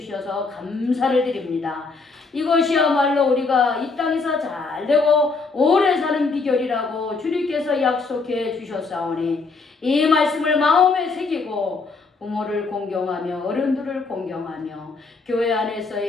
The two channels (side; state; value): right; quieter; 4.1 dB